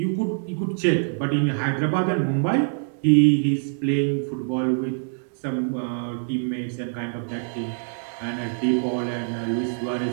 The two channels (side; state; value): left; silent; digital silence